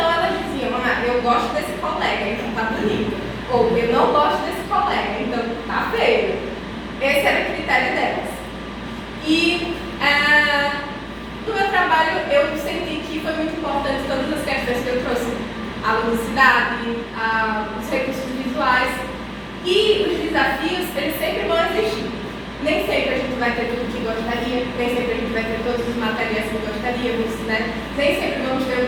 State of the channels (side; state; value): both; identical; correlation 1.00